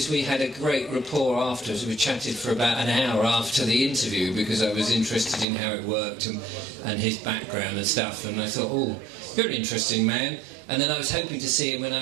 we had a great rapport afterwards. We chatted for about an hour after the interview because I was interested in how it worked and his background and stuff. And I thought, oh, you're an interesting man. And then I was hoping to see him when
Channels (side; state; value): left; drops out; at 5.5 s